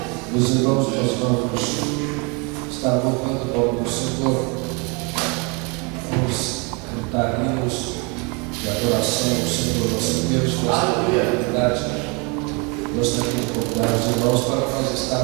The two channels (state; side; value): quieter; left; 31.2 dB